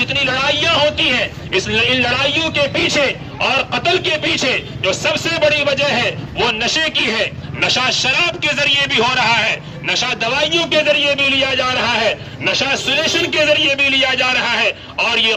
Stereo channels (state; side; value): identical; both; correlation 1.00